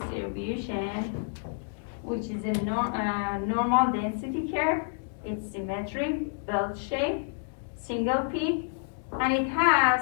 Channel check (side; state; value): right; silent; digital silence